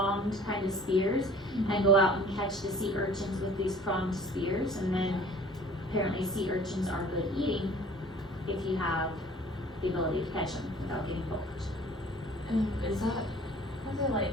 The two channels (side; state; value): both; normal; correlation 0.50